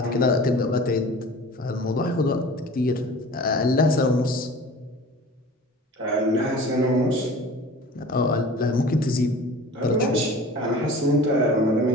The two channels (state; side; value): normal; both; correlation 0.41